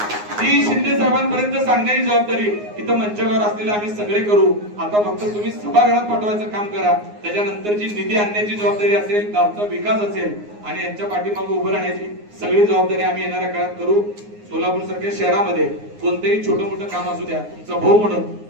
ती शिंदे साहेबांपर्यंत सांगण्याची जबाबदारी इथं मंचावर असलेले आम्ही सगळे करू. आता फक्त तुम्ही सभागृहात पाठवायचं काम करा. त्याच्यानंतरची निधी आणण्याची जबाबदारी असेल, गावचा विकास असेल आणि यांच्या पाठीमागे उभं राहण्याची सगळी जबाबदारी आम्ही येणाऱ्या काळात करू. सोलापूर सारख्या शहरामध्ये कोणतेही छोटं मोठं काम असू द्या, तुमचा भाऊ म्हणून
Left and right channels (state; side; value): late; left; 9.6 ms